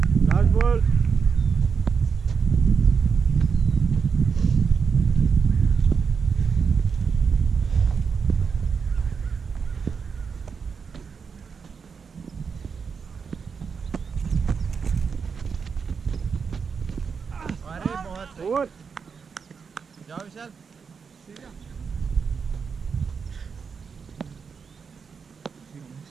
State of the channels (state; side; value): quieter; left; 5.8 dB